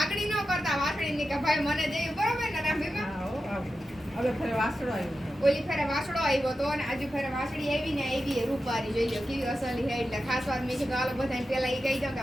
ન કરતા વાસળીની કે ભાઈ મને દેવી બરોબર ને રાંભીમાં. હવે ફરે વાસળો આવ્યો ઓલી ફેરે વાસળો આવ્યો તો અને આજુ ફેરે વાસળી આવી ને આવી રૂપારી જોઈ લો કેવી અસલી છે. એટલે ખાસ વાત મેં કીધું હાલો બધાને પેલા એ કહી દઉં કે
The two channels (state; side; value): normal; both; correlation 0.91